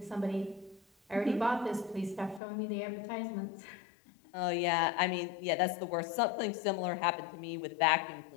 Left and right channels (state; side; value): drops out; right; at 2.4 s